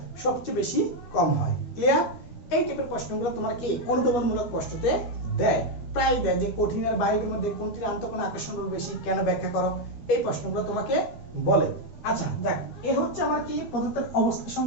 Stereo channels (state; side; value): late; right; 12 ms